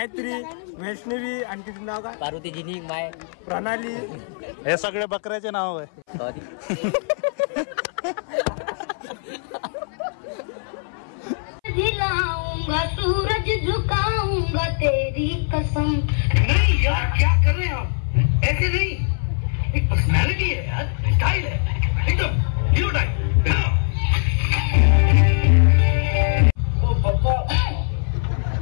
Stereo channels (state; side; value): silent; right; 60 dB below the other